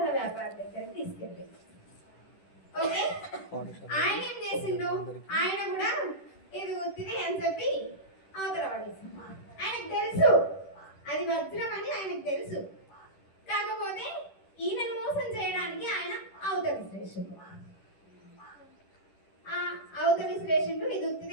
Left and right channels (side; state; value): right; late; 10 ms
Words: వ్యాపారి దగ్గరికి తీసుకెళ్ళింది. ఓకే, ఆయన ఏం చేసిండు? ఆయన కూడా ఇది ఒత్తిది అని చెప్పి అవతల పడేసిండు. ఆయనకు తెలుసు అది వజ్రం అని ఆయనకు తెలుసు. కాకపోతే ఈయనను మోసం చేయడానికి ఆయన అవతల విశ్లేషిండు. అవతల విశ్లేషిండు ఇది